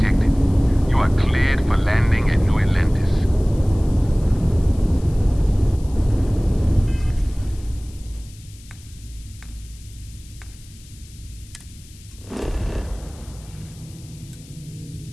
You are cleared for landing at New Atlantis.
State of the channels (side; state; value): left; noise; hiss, 23 dB below the sound